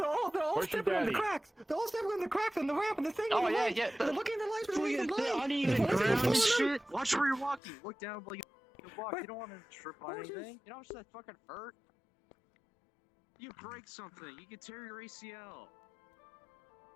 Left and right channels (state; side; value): drops out; right; at 7.6 s